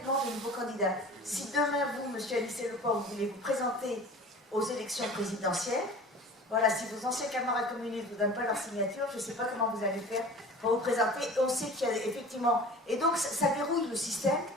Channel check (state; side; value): normal; both; correlation 0.40